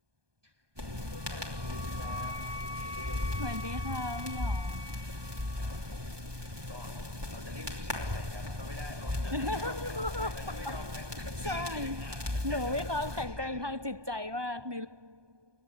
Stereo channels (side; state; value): left; late; 1.2 ms